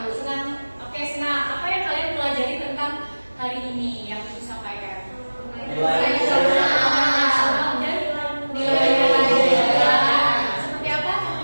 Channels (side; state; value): both; inverted; correlation -1.00